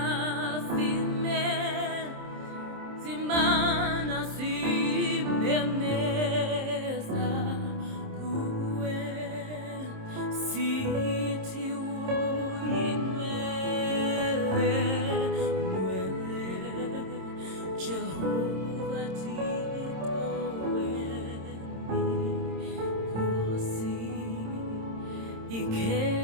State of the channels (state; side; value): late; left; 26 ms